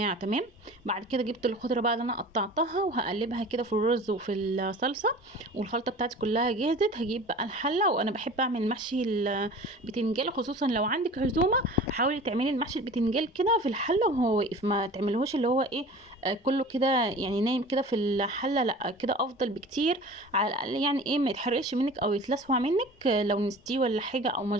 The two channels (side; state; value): both; normal; correlation 0.40